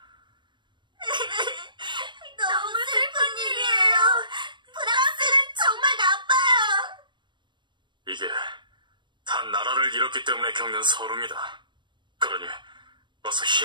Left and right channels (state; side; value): late; left; 0.22 ms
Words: 너무 슬픈 일이에요. 프랑스는 정말 나빠요. 이게 다 나라를 잃었기 때문에 겪는 서름이다. 그러니 어서